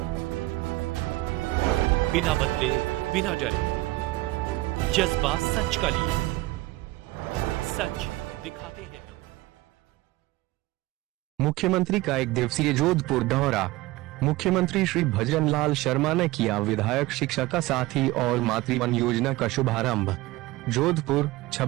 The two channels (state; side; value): quieter; left; 19.1 dB